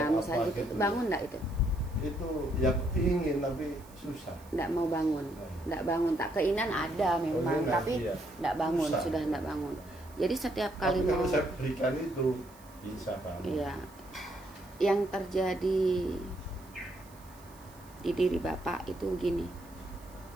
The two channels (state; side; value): noise; right; hiss, 25 dB below the sound